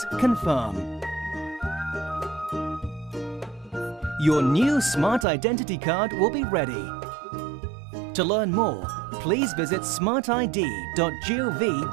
Confirm. Your new Smart Identity card will be ready. To learn more, please visit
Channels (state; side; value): drops out; left; at 5.2 s